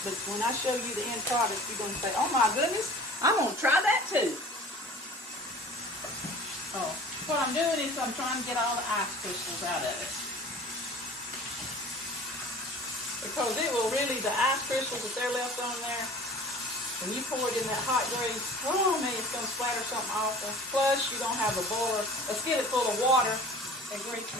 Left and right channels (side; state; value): both; normal; correlation 0.43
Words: but when I show you the end product, you're going to say, oh my goodness, I'm going to try that too. Oh, what I'm doing is I'm trying to get all the ice crystals out of it. Because it will really, the ice crystals that they're left on there, when you pour it in that hot grease, oh man, it's going to splatter something awful. Plus, you're going to have a skillet full of water and grease